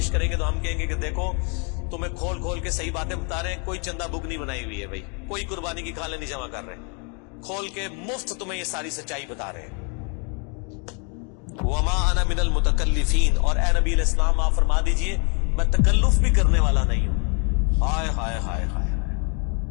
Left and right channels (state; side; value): quieter; right; 36.8 dB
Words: کریں گے تو ہم کہیں گے کہ دیکھو تمہیں کھول کھول کے صحیح باتیں بتا رہے ہیں, کوئی چندہ بک نہیں بنائی ہوئی ہے بھائی, کوئی قربانی کی کھالیں نہیں جمع کر رہے, کھول کے مفت تمہیں یہ ساری سچائی بتا رہے ہیں. وما انا من المتکلفین, اور اے نبی علیہ السلام آپ فرما دیجئے میں تکلف بھی کرنے والا نہیں ہوں. ہائے ہائے ہائے ہائے,